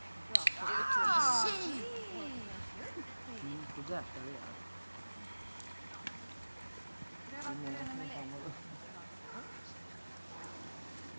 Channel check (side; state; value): both; inverted; correlation -1.00